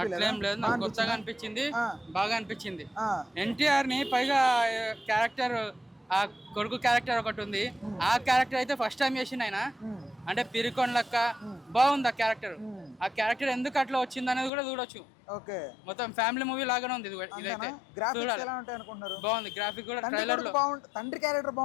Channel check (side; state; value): right; drops out; at 14.5 s